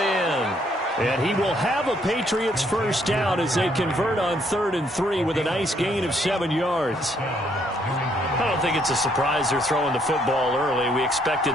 And he will have a Patriots first down as they convert on 3rd and 3 with a nice gain of 7 yards. I don't think it's a surprise they're throwing the football early. We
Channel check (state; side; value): normal; both; correlation 0.69